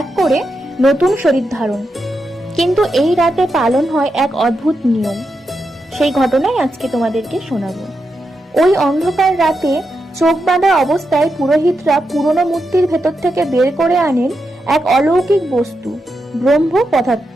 করে নতুন শরীর ধারণ। কিন্তু এই রাতে পালন হয় এক অদ্ভুত নিয়ম। সেই ঘটনাই আজকে তোমাদেরকে শোনাবো। ওই অন্ধকার রাতে চোখ বাঁধা অবস্থায় পুরোহিতরা পুরনো মূর্তির ভেতর থেকে বের করে আনেন এক অলৌকিক বস্তু, ব্রহ্ম পদার্থ।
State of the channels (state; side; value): normal; both; correlation 0.86